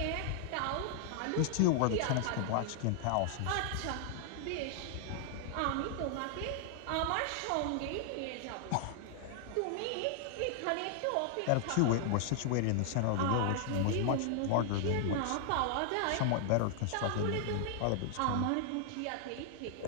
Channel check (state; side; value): different; both; correlation 0.00